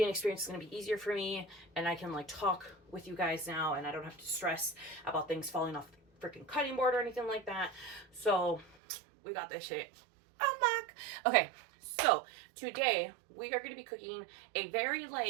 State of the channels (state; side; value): drops out; left; at 8.8 s